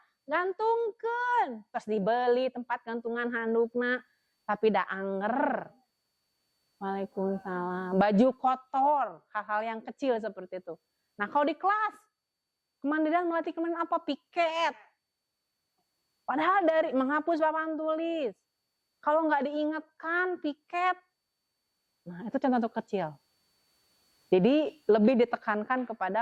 Gantungkan. Terus dibeli tempat gantungan handukna. Tapi dah anger. Waalaikumsalam. Baju kotor. Hal-hal yang kecil seperti itu. Nah kalau di kelas. Kemandirian melatih kemandirian apa? Piket. Padahal dari menghapus papan tulis. Kalau nggak diingatkan, piket. Nah, itu contoh kecil. Jadi lebih ditekankan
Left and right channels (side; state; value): both; identical; correlation 1.00